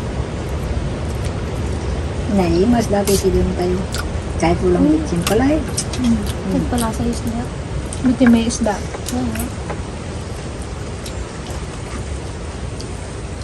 Naimas dati sila tayo. Kahit walang bitsin pala eh. Nagpalasa yung isda. Buti may isda.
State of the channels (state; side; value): identical; both; correlation 1.00